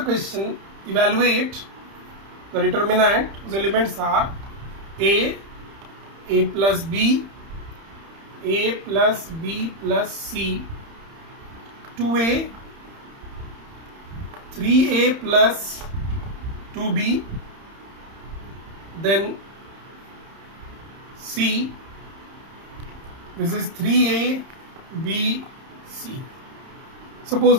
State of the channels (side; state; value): left; late; 31 ms